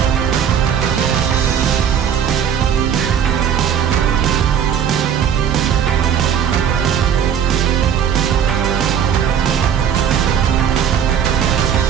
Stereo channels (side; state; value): left; quieter; 8.5 dB